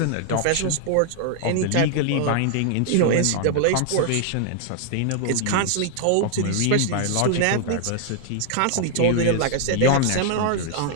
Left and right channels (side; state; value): both; different; correlation 0.00